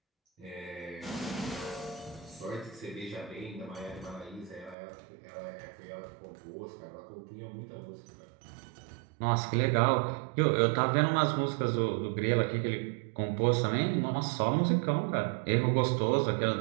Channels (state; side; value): drops out; left; at 4.8 s